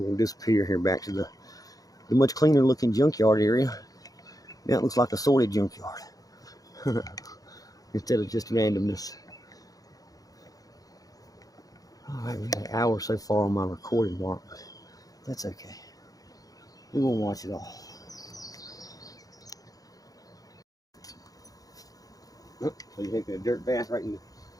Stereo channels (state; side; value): late; right; 0.17 ms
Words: disappear here back to the much cleaner looking junkyard area. Now it looks like a sorted junkyard. Instead of just randomness. All right, we got an hour so far on my recording mark. That's okay. We won't watch it all. Oh, so you're taking a dirt bath right in